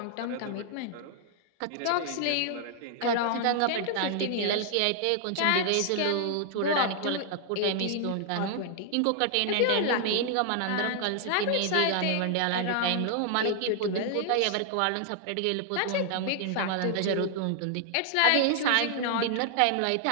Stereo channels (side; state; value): both; different; correlation 0.00